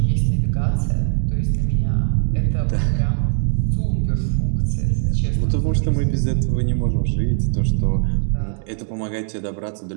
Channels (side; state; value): left; silent; 63 dB below the other